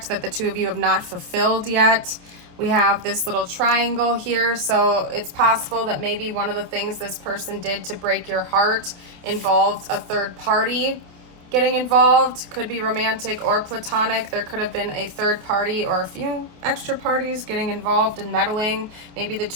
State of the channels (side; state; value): left; late; 28 ms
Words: that the two of you have not fulfilled yet. We have this little triangle here, so it's possible that maybe one of the things this person did to break your heart involved a third party getting involved. Could be romantic or platonic. There could have been a third party or a few extra parties getting involved and meddling. Maybe the